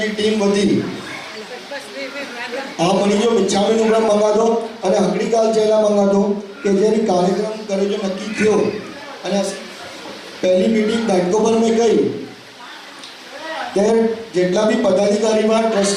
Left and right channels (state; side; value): identical; both; correlation 1.00